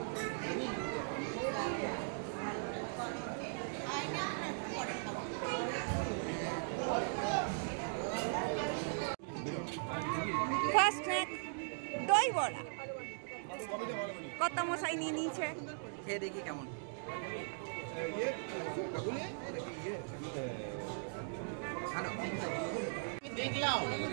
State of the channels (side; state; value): left; silent; digital silence